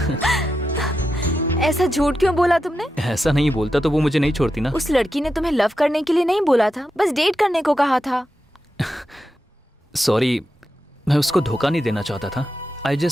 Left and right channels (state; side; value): normal; both; correlation 0.88